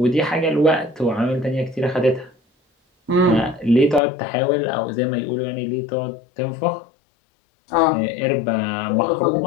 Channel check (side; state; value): right; drops out; at 4.0 s